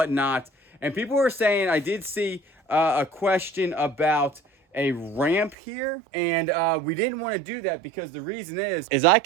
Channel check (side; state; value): left; drops out; at 5.6 s